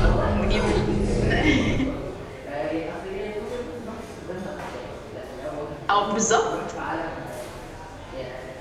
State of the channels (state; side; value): identical; both; correlation 1.00